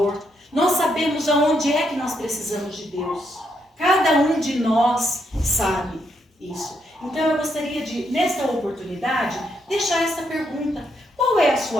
Nós sabemos aonde é que nós precisamos de Deus. Cada um de nós sabe isso. Então eu gostaria de, nesta oportunidade, deixar essa pergunta. Qual é a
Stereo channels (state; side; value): normal; both; correlation 0.77